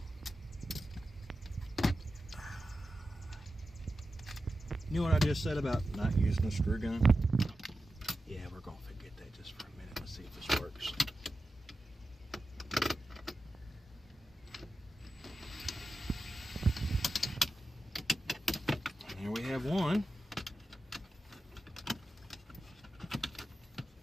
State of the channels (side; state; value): both; normal; correlation 0.92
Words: You know what I just said about not using a screw gun? Yeah, we're going to forget that just for a minute. Let's see if this works. And here we have one.